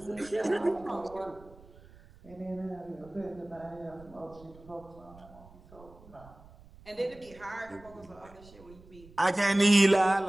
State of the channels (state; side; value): noise; right; rumble, 22 dB below the sound